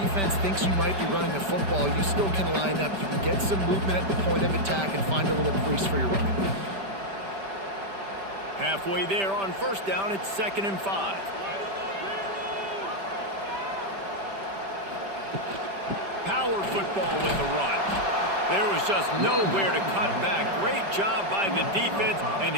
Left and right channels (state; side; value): late; left; 5.1 ms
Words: thinks you might be running the football, you still can line up. You can get some movement at the point of attack and find a little crease for your running back. Halfway there on first down, it's 2nd and 5. Power football with the run. There was just nowhere to cut back. Great job by the defense, and